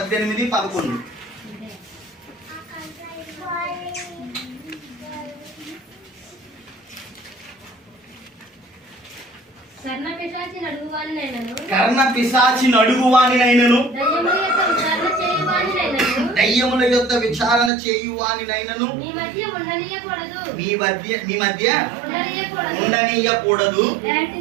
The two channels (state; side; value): drops out; left; at 17.7 s